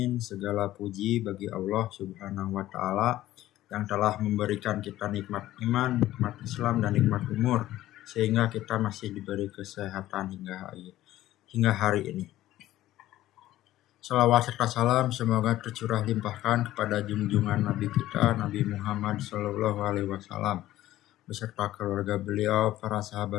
segala puji bagi Allah Subhanahu wa taala yang telah memberikan kita nikmat iman, nikmat Islam dan nikmat umur sehingga kita masih diberi kesehatan hingga hari ini. Salawat serta salam semoga tercurah limpahkan kepada junjungan Nabi kita Nabi Muhammad SAW beserta keluarga beliau, para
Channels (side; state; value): right; quieter; 14.7 dB